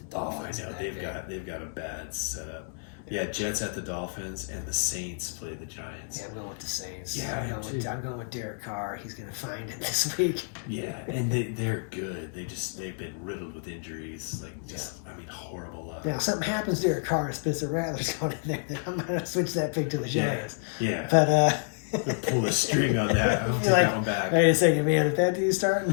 the Oh, Dolphins. I know. in that They've game. got a bad setup. Yeah, Jets at the Dolphins and the Saints play the Giants. Yeah, I'm going with the Saints. Yeah, I am too. I'm going with Derek Carr. He's going to find it this week. Yeah, and they're good. They've been riddled with injuries. Horrible luck. Now, if something happens to Derek Carr, Spencer Rattler's going in there, then I'm going to switch that pick to the Yeah. Giants. Yeah. But, They'll pull the string on that. I'll take that one back. wait a second, man. If that dude's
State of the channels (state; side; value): silent; right; 58 dB below the other